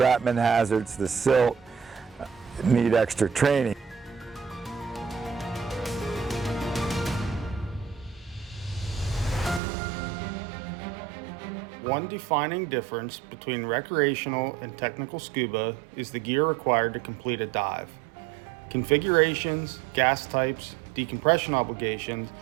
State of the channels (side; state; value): left; drops out; at 9.6 s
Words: hazards, the silt need extra training. One defining difference between recreational and technical scuba is the gear required to complete a dive. Configurations, gas types, decompression obligations,